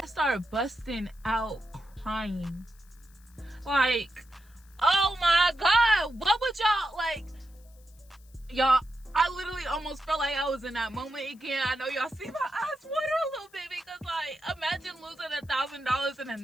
started busting out crying. Like, oh my God, what would y'all, like, y'all, I literally almost felt like I was in that moment again. I know y'all see my eyes water a little bit, because, like, imagine losing $1,000 in a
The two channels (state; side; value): noise; left; hiss, 29 dB below the sound